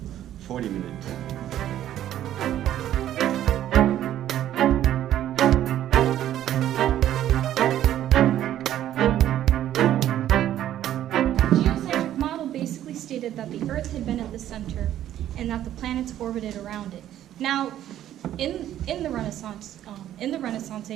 40 minutes. Geocentric model basically stated that the Earth had been at the center and that the planets orbited around it. Now, in the Renaissance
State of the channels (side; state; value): left; quieter; 11.9 dB